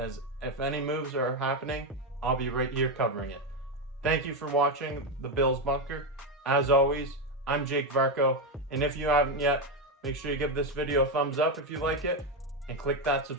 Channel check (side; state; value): both; normal; correlation 0.09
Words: if any moves are happening, I'll be right here covering it. Thank you for watching the Bills Bunker. As always, I'm Jake Varco, and if you haven't yet, make sure you give this video a thumbs up if you like it, and click that